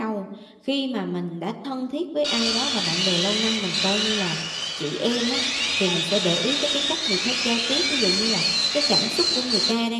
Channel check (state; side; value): identical; both; correlation 1.00